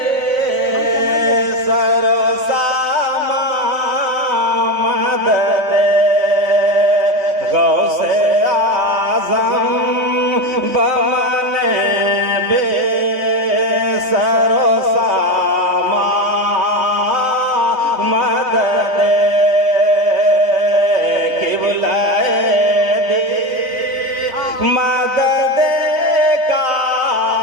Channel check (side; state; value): left; late; 3.5 ms